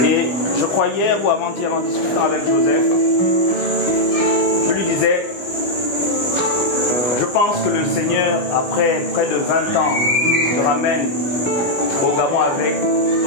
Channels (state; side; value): late; right; 17 ms